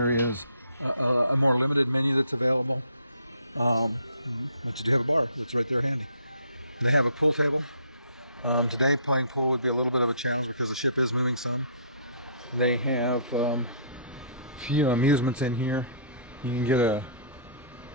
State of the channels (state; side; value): inverted; both; correlation -0.56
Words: is a more limited menu that's available. But you do have a bar that's right there handy. They have a pool table. Today playing pool would be a little bit of a challenge because the ship is moving some. They have a few amusements in here. You can get